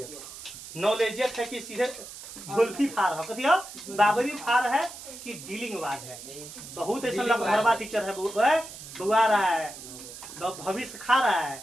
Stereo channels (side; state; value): right; noise; hiss, 13 dB below the sound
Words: नॉलेजियत है कि सीधे झुल्फी फार है, कथी है बाबरी फार है कि डीलिंग बाज है। बहुत ऐसा लगभगवा टीचर है, बुआ रहा है, भविष्य खा रहा है,